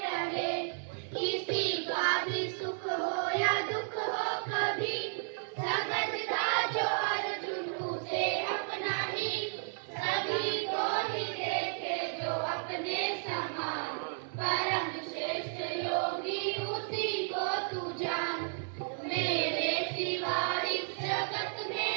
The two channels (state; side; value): silent; left; digital silence